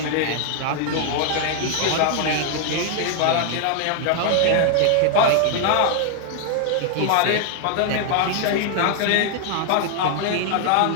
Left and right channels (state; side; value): different; both; correlation 0.00